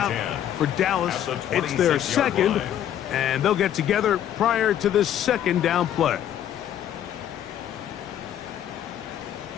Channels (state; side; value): quieter; right; 10.7 dB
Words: for Dallas. It's their second, and they'll get together prior to this 2nd down play.